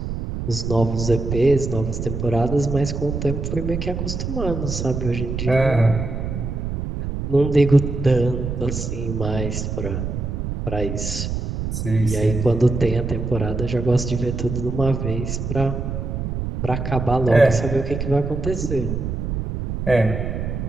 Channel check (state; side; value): noise; right; rumble, 4 dB below the sound